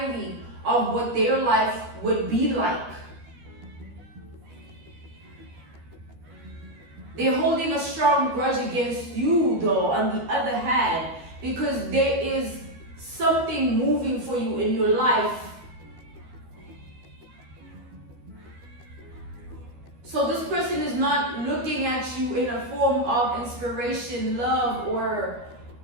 of what their life would be like. They're holding a strong grudge against you, though, on the other hand, because there is something moving for you in your life. So this person is not looking at you in a form of inspiration, love, or,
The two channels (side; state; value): left; late; 13 ms